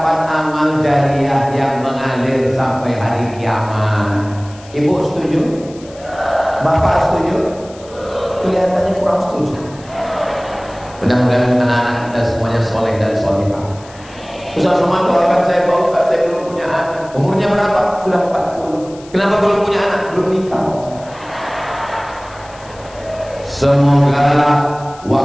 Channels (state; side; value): noise; left; hiss, 23 dB below the sound